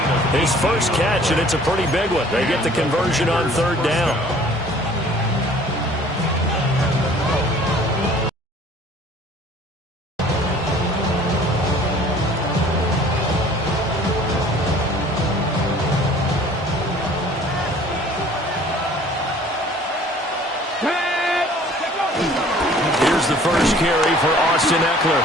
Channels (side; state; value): both; normal; correlation 0.52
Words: His first catch, and it's a pretty big one. They get the conversion on 3rd down. The first carry for Austin Eckler.